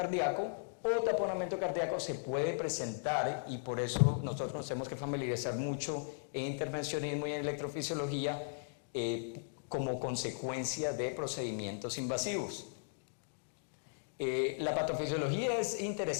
o taponamiento cardíaco se puede presentar, y por eso nosotros nos tenemos que familiarizar mucho en intervencionismo y en electrofisiología como consecuencia de procedimientos invasivos. La patofisiología es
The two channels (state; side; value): silent; right; digital silence